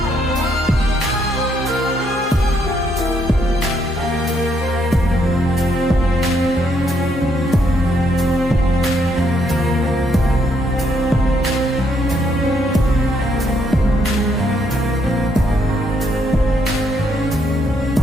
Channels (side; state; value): both; normal; correlation 0.73